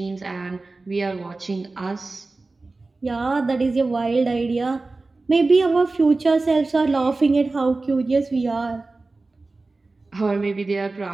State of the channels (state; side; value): quieter; left; 3.4 dB